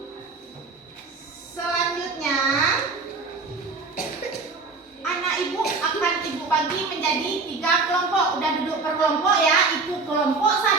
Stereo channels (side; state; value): left; quieter; 4.1 dB